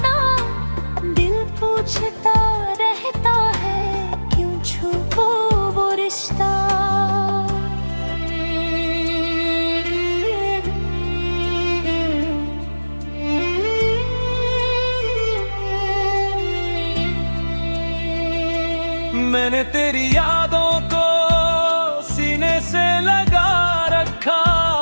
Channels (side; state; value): both; inverted; correlation -1.00